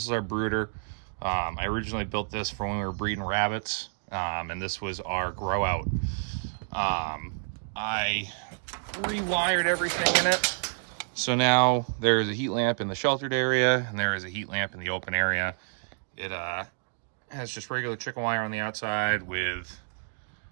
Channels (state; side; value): silent; left; 59 dB below the other